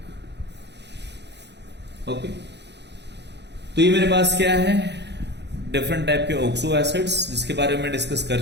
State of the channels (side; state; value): left; late; 0.50 ms